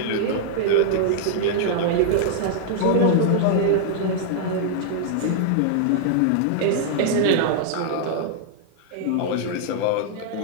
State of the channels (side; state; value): both; different; correlation -0.01